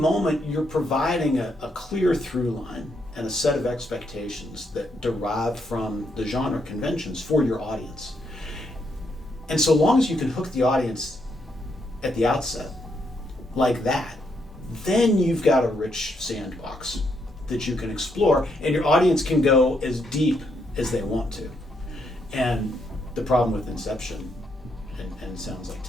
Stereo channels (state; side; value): normal; both; correlation 0.77